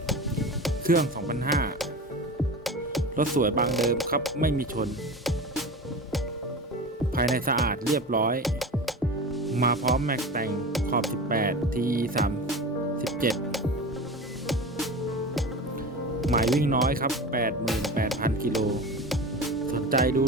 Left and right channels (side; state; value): both; normal; correlation 0.31